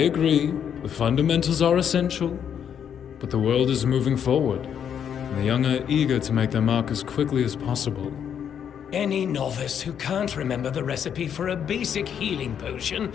The fundamentals are essential. But the world is moving forward, and the young are eager to make their mark as quickly as possible. Any novice who can't remember the recipe for a basic healing potion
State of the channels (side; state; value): right; quieter; 8.5 dB